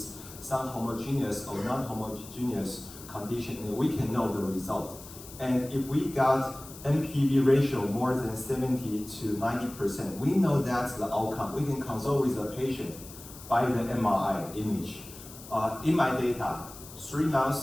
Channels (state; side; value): noise; left; hiss, 16 dB below the sound